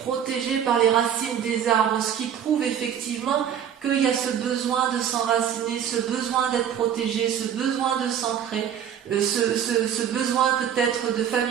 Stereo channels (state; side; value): quieter; left; 9.0 dB